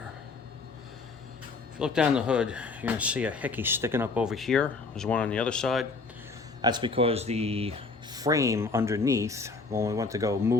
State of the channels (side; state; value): right; quieter; 4.0 dB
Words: If you look down the hood, you're going to see a hickey sticking up over here. There's one on the other side. That's because the frame underneath, when we went to go